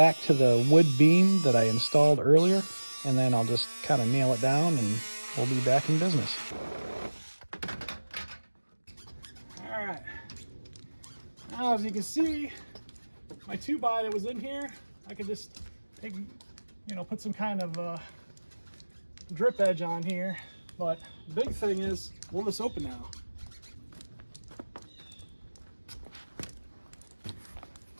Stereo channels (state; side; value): inverted; both; correlation -1.00